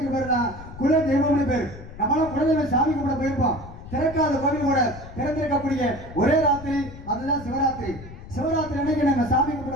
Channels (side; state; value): left; noise; rumble, 15 dB below the sound